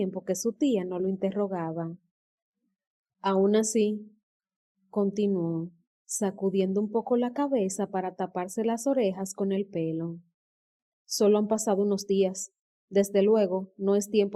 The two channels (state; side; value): identical; both; correlation 1.00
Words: que su tía no lo interrogaba. Aún así, continuó, sacudiendo un poco la cabeza para taparse las orejas con el pelo. Solo han pasado unos días. Desde luego, no es